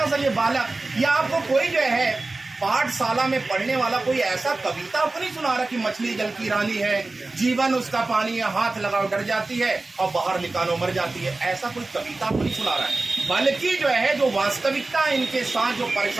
सा ये बालक या आपको कोई जो है पाठशाला में पढ़ने वाला कोई ऐसा कविता आपको नहीं सुना रहा कि मछली जल की रानी है, जीवन उसका पानी है, हाथ लगाओ डर जाती है और बाहर निकालो मर जाती है। ऐसा कोई कविता आपको नहीं सुना रहा है, बल्कि जो है जो वास्तविकता इनके साथ जो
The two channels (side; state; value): left; quieter; 3.3 dB